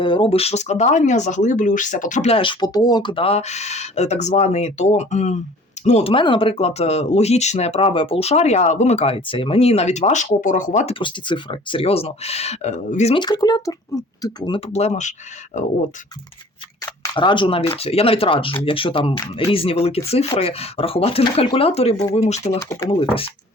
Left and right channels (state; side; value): normal; both; correlation 0.49